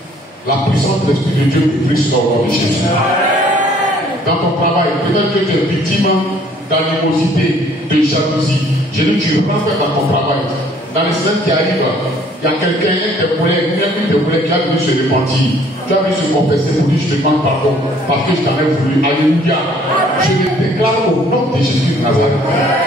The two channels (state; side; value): normal; both; correlation 0.59